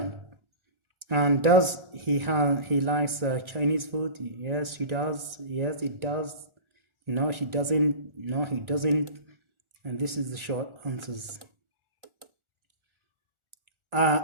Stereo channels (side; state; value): left; late; 1.4 ms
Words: And does he likes Chinese food? Yes, he does. Yes, it does. No, she doesn't. No, he doesn't. And this is the short answers.